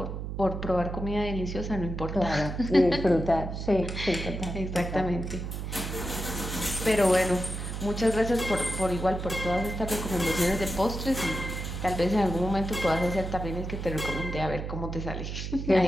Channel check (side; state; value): right; noise; hum, 5 dB below the sound